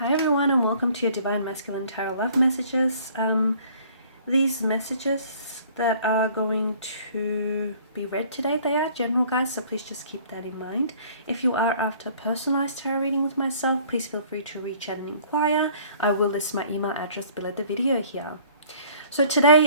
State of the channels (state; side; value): inverted; both; correlation -0.54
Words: everyone, and welcome to your Divine Masculine Tarot Love Messages. These messages that are going to be read today, they are general, guys, so please just keep that in mind. If you are after a personalized tarot reading with myself, please feel free to reach out and inquire. I will list my email address below the video here. So